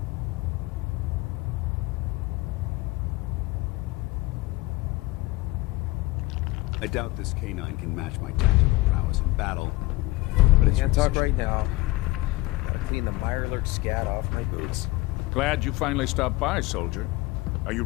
I doubt this canine can match my tactical prowess in battle, but it's Can't talk right now. Gotta clean the Mirelurk scat off my boots. Glad you finally stopped by, soldier. Are you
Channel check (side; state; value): right; quieter; 20.3 dB